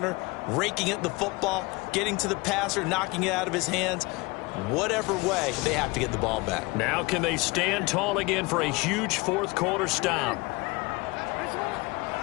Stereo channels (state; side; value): quieter; right; 24.6 dB